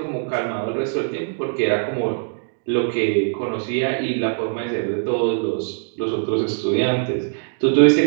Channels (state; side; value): silent; left; digital silence